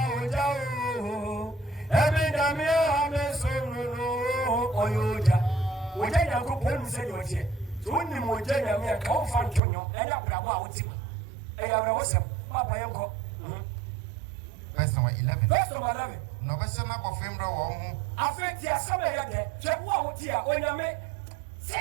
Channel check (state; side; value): drops out; left; at 9.6 s